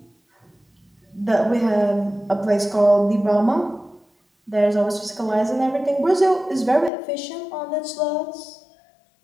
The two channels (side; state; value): right; drops out; at 6.9 s